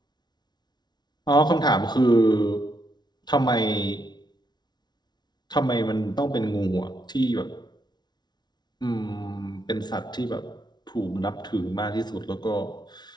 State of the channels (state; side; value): late; right; 0.20 ms